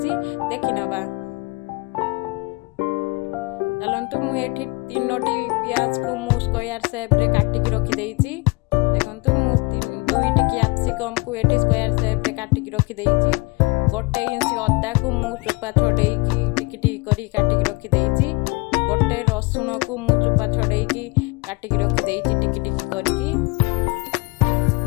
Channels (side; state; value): right; quieter; 25.9 dB